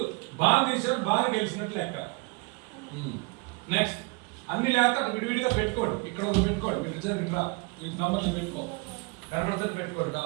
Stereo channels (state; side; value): quieter; left; 28.3 dB